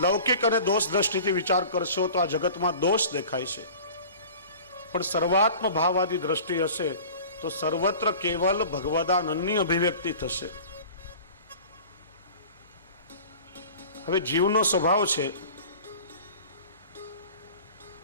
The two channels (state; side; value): inverted; both; correlation -0.42